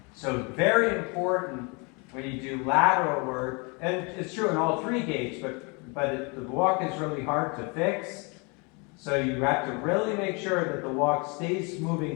So very important when you do lateral work, and it's true in all three gaits, but the walk is really hard to fix. So you have to really make sure that the walk stays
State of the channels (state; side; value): quieter; right; 31.0 dB